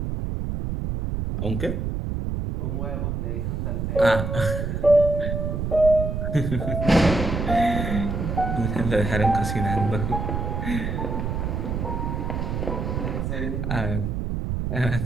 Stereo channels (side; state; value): right; noise; rumble, 2 dB below the sound